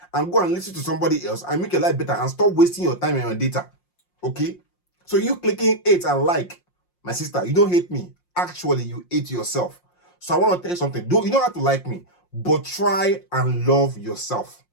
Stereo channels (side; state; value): right; late; 5.6 ms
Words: and go and listen to somebody else and make your life better and stop wasting your time and your data? Okay? So you clicking hate and like, my sister, you don't hate me. Actually, you hate yourself. So I want to tell you something. You don't have to like me, but try and love yourself.